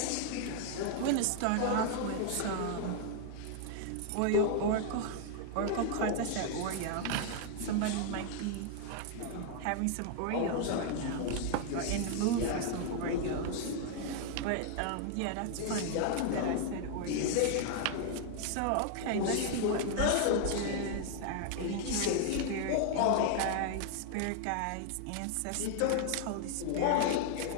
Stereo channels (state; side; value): different; both; correlation 0.00